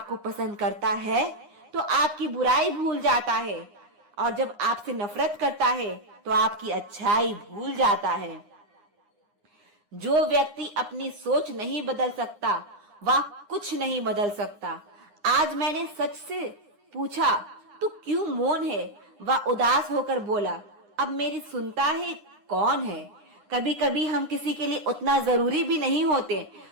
पसंद करता है तो आपकी बुराई भूल जाता है, और जब आपसे नफरत करता है तो आपकी अच्छाई भूल जाता है। जो व्यक्ति अपनी सोच नहीं बदल सकता वह कुछ नहीं बदल सकता। आज मैंने सच से पूछा, तू क्यों मौन है? वह उदास होकर बोला, अब मेरी सुनता है कौन है? कभी कभी हम किसी के लिए उतना जरूरी भी नहीं होते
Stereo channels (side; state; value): left; late; 9.7 ms